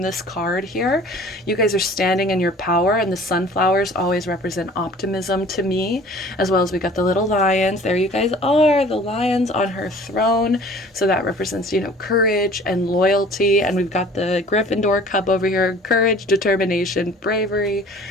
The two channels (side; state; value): both; normal; correlation 0.48